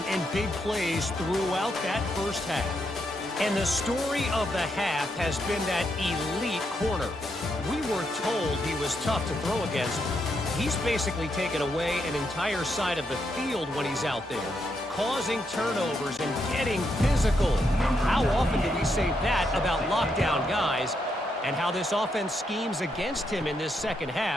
and big plays throughout that first half. And the story of the half has been that elite corner. We were told he was tough to throw against. He's basically taken away an entire side of the field when he's out there, causing turnovers and getting physical. How often do we say that about lockdown guys? And how this offense schemes against him in this second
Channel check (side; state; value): both; normal; correlation 0.80